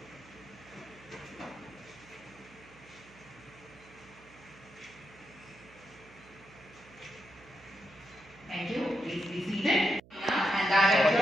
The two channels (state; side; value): noise; right; hum, 23 dB below the sound